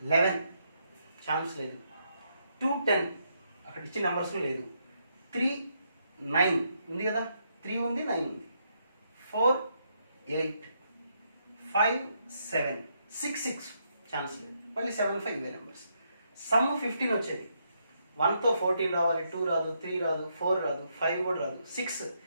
11 ఛాన్స్ లేదు. 2, 10 అక్కడ ఇచ్చిన నెంబర్స్ లేదు. 3, 9 ఉంది కదా, 3 ఉంది, 9 ఉంది. 4, 8, 5, 7, 6 ఛాన్స్ లేదు, మళ్ళీ 7, 5 ఇవే నెంబర్స్. సమ్ 15 వచ్చేది. 1తో 14 రావాలి, 2 రాదు, 3 రాదు, 4 రాదు, 5 కూడా రాదు.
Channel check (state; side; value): inverted; both; correlation -0.77